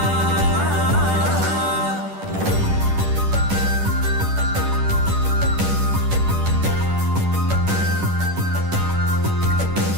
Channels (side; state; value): left; late; 10 ms